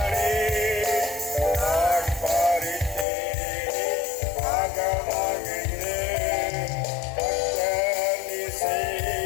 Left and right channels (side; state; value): right; drops out; at 3.1 s